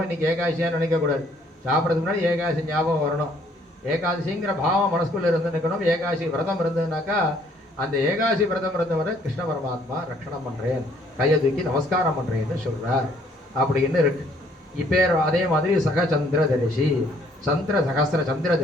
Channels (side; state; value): both; normal; correlation 0.63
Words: இன்னைக்கு ஏகாசியா நினைக்கக்கூடாது. சாப்பிட்றதுக்கு முன்னாடி ஏகாசி ஞாபகம் வரணும். ஏகாதசிங்கிற பாவம் மனசுக்குள்ள இருந்து நிற்கணும். ஏகாசி விரதம் இருந்ததுனாக்கா அந்த ஏகாசி விரதம் இருந்தவரை கிருஷ்ண பரமாத்மா ரட்சணம் பண்றேன், கையை தூக்கி நமஸ்காரம் பண்றேன்னு சொல்றார் அப்படின்னு இருக்கு. இப்போ அதே மாதிரி சகச்சந்திர தரிசி, சகஸ்திர சந்திர